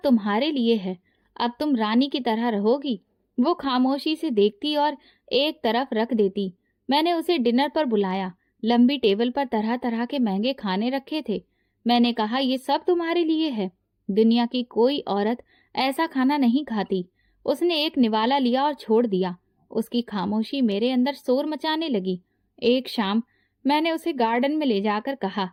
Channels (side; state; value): both; identical; correlation 1.00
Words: तुम्हारे लिए है, अब तुम रानी की तरह रहोगी। वो खामोशी से देखती और एक तरफ रख देती। मैंने उसे डिनर पर बुलाया। लंबी टेबल पर तरह तरह के महंगे खाने रखे थे। मैंने कहा, ये सब तुम्हारे लिए है, दुनिया की कोई औरत ऐसा खाना नहीं खाती। उसने एक निवाला लिया और छोड़ दिया। उसकी खामोशी मेरे अंदर शोर मचाने लगी। एक शाम मैंने उसे गार्डन में ले जाकर कहा,